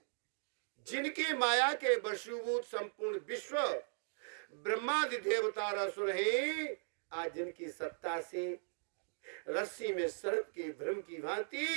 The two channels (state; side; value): silent; left; digital silence